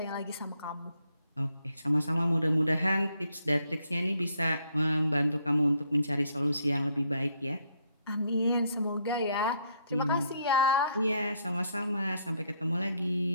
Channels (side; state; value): both; inverted; correlation -0.71